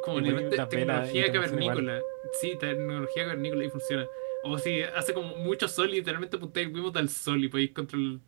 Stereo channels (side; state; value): left; silent; digital silence